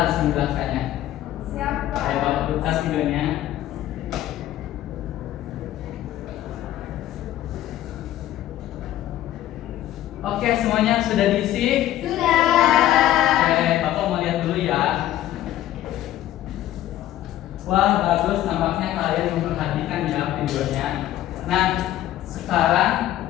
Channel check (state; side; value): quieter; right; 13.3 dB